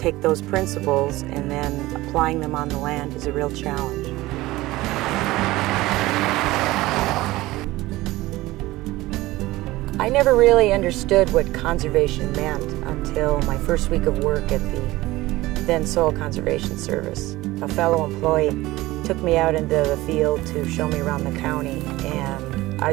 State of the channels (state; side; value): quieter; left; 18.4 dB